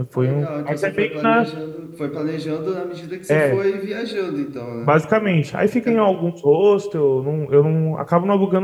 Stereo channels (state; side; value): identical; both; correlation 1.00